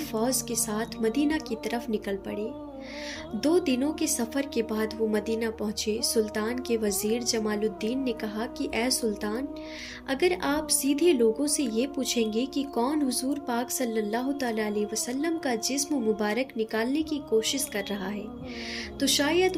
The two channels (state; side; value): identical; both; correlation 1.00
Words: फौज के साथ मदीना की तरफ निकल पड़े। 2 दिनों के सफ़र के बाद वो मदीना पहुँचे। सुल्तान के वज़ीर जमालुद्दीन ने कहा कि ए सुल्तान, अगर आप सीधे लोगों से ये पूछेंगे कि कौन हुजूर पाक सल्लल्लाहु तआला अलैहि वसल्लम का जिस्म मुबारक निकालने की कोशिश कर रहा है तो शायद